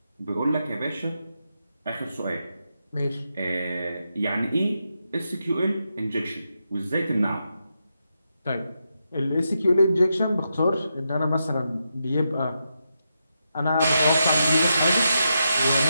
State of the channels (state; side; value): inverted; both; correlation -0.85